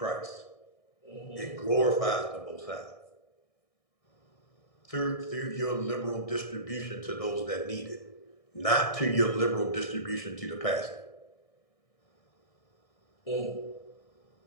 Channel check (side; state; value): right; late; 1.6 ms